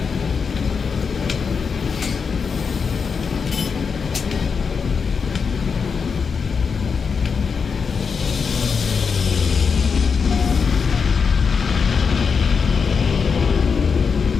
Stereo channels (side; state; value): right; quieter; 5.7 dB